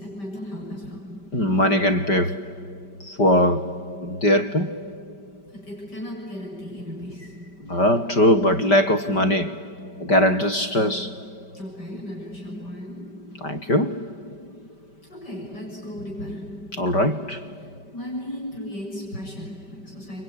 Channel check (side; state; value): right; late; 5.1 ms